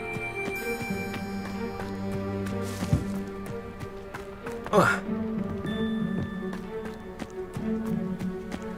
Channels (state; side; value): identical; both; correlation 1.00